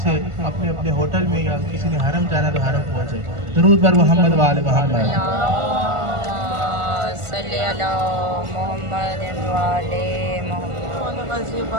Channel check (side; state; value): left; late; 1.4 ms